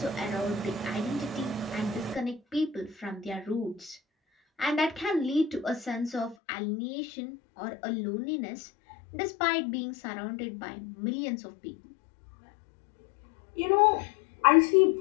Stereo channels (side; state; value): right; drops out; at 6.4 s